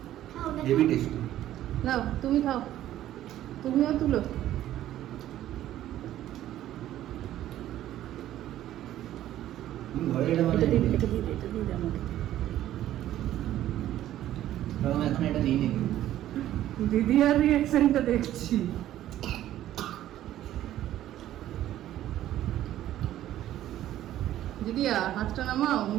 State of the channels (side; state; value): left; quieter; 12.9 dB